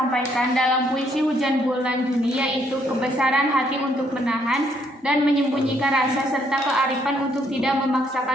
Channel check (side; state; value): both; normal; correlation 0.70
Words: dalam puisi Hujan Bulan Juni yaitu kebesaran hati untuk menahan dan menyembunyikan rasa serta kearifan untuk tidak